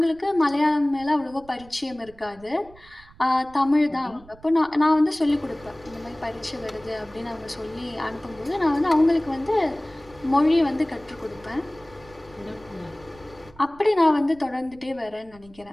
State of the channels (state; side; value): noise; right; rumble, 24 dB below the sound